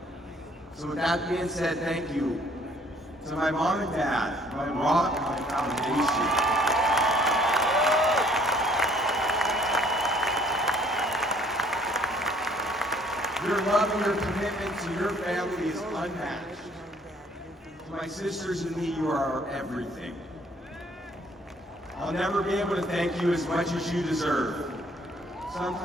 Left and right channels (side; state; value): both; normal; correlation 0.60